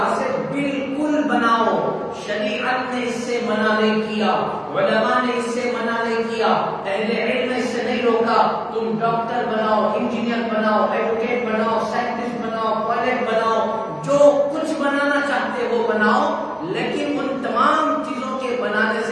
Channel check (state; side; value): identical; both; correlation 1.00